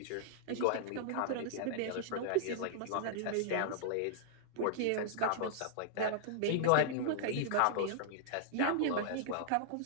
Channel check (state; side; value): different; both; correlation -0.02